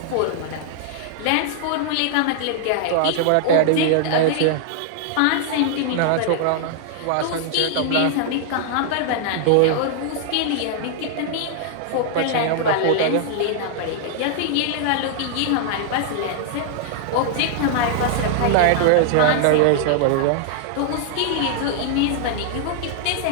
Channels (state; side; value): different; both; correlation -0.01